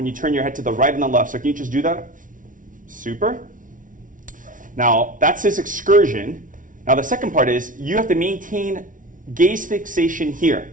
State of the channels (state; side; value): late; left; 0.38 ms